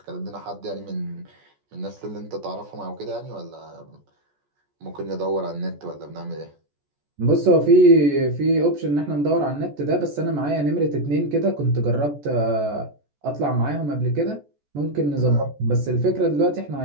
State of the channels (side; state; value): left; late; 14 ms